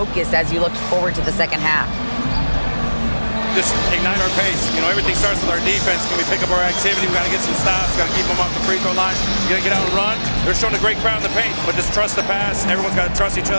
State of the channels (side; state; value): both; inverted; correlation -1.00